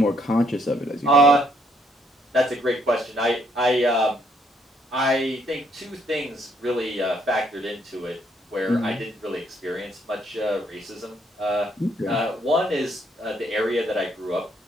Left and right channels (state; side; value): normal; both; correlation 0.70